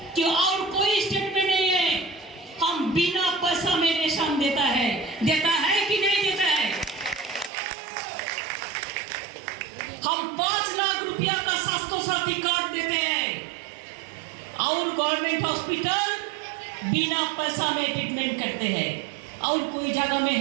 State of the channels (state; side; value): drops out; left; at 7.5 s